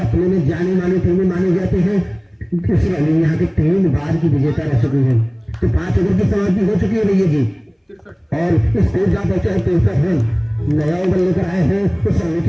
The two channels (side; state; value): both; identical; correlation 1.00